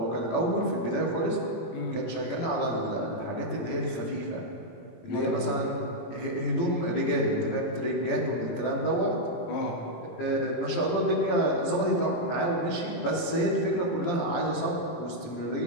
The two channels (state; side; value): late; right; 17 ms